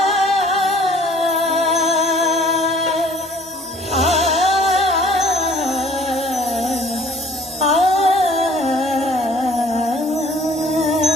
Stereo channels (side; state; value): both; normal; correlation 0.54